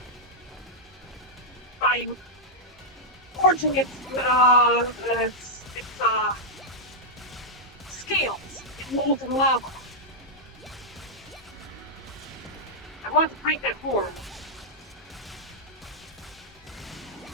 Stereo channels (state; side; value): normal; both; correlation -0.05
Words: by forging its scales in molten lava. I want to break that horn.